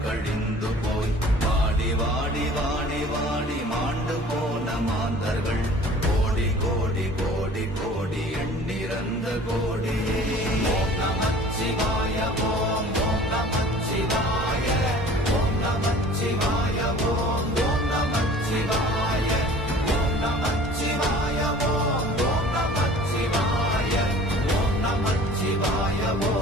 கழிந்து போய் வாடி வாடி வாடி வாடி மாண்டு போன மாந்தர்கள் கோடி கோடி கோடி கோடி எண்ணிறந்த கோடியே. ஓம் நமச்சிவாய ஓம் ஓம் நமச்சிவாய ஓம் நமச்சிவாய ஓம் ஓம் நமச்சிவாய ஓம் நமச்சிவாய ஓம் ஓம் நமச்சிவாய ஓம் நமச்சிவாய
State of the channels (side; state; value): both; normal; correlation 0.47